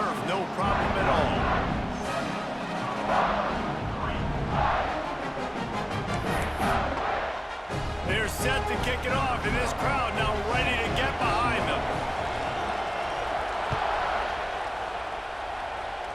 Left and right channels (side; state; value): both; identical; correlation 1.00